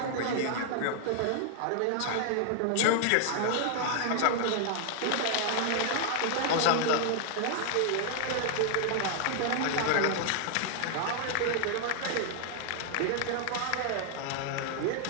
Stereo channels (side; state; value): both; different; correlation 0.00